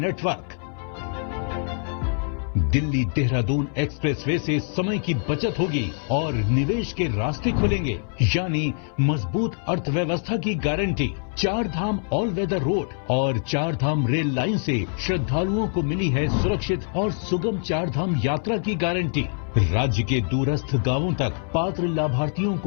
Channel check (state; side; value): silent; right; 55 dB below the other